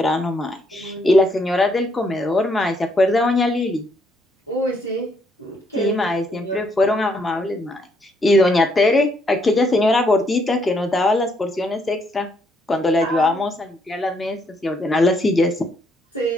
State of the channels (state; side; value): normal; both; correlation 0.72